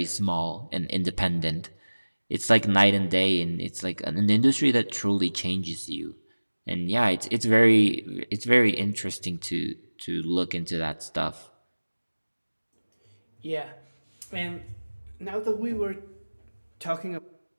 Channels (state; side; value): inverted; both; correlation -1.00